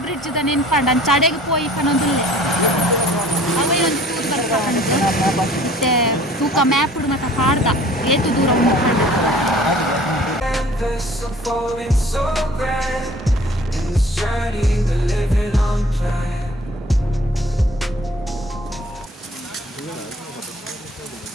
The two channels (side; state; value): both; normal; correlation 0.51